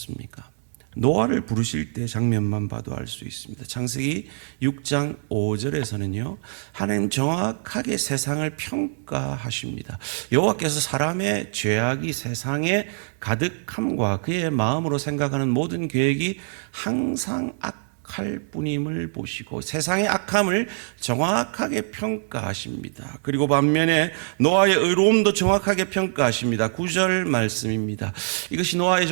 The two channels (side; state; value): left; silent; 62 dB below the other